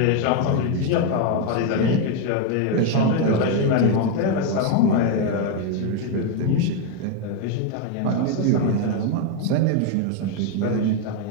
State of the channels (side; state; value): both; different; correlation 0.01